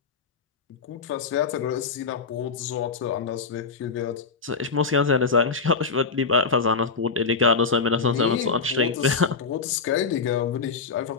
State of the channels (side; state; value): right; quieter; 4.9 dB